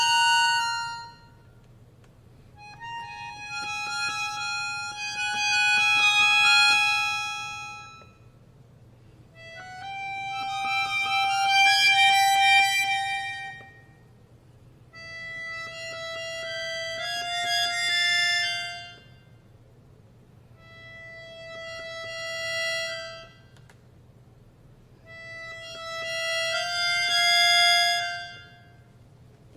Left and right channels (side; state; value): both; identical; correlation 1.00